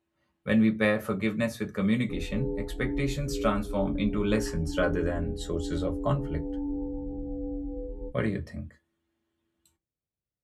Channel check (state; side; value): identical; both; correlation 1.00